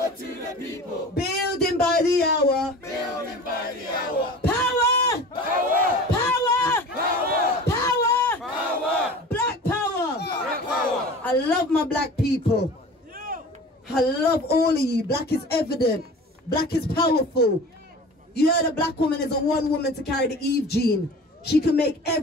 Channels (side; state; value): both; normal; correlation 0.39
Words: to the people. Building by the hour. Building by the hour. Power! Power! Power! Power! Power! Power! Black power! Black power! I love my black people. I love all of you. Black is evident. Black is powerful. You heard a black woman is a one woman to carry the Eve gene. She can make